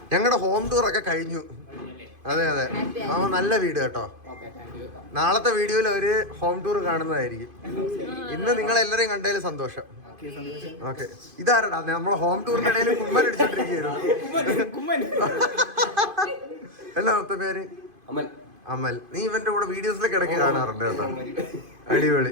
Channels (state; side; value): late; left; 2.5 ms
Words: ഞങ്ങളുടെ ഹോം ടൂർ ഒക്കെ കഴിഞ്ഞു. അതെ, നല്ല വീട് കേട്ടോ. നാളത്തെ വീഡിയോയിൽ ഒരു ഹോം ടൂർ കാണുന്നതായിരിക്കും. ഇന്ന് നിങ്ങളെല്ലാരെയും കണ്ടതിൽ സന്തോഷം. ഓക്കെ, ഇതാരടാ നമ്മളെ ഹോം ടൂറിന്റെ ഇടയിൽ കുമ്മൻ അടിച്ചോണ്ടിരിക്കുകയായിരുന്നു. എന്നാ മൊത്തം പേര്? അമൽ. നീ ഇവന്റെ കൂടെ വീഡിയോസിലൊക്കെ ഇടയ്ക്ക് കാണാറുണ്ട് കേട്ടോ.